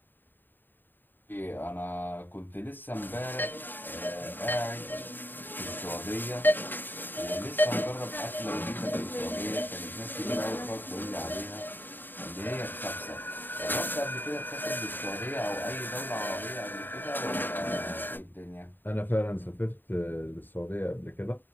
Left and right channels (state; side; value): late; right; 0.092 ms